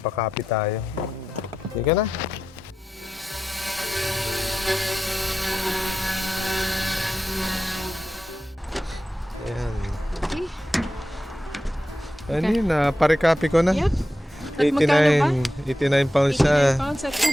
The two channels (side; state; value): both; normal; correlation 0.90